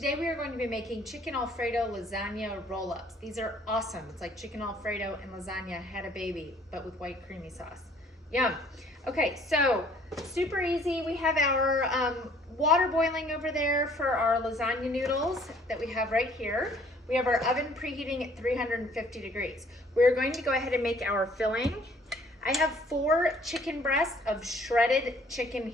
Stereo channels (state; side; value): normal; both; correlation 0.59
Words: we are going to be making chicken Alfredo lasagna roll-ups. These are awesome. It's like chicken Alfredo and lasagna had a baby, but with white creamy sauce. Yum. Okay, so super easy. We have our water boiling over there for our lasagna noodles that we have right here. We have our oven preheating at 350 degrees. We're going to go ahead and make our filling. I have 4 chicken breasts of shredded chicken